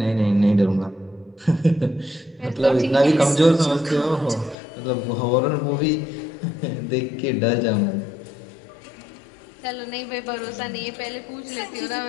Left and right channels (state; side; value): drops out; right; at 4.5 s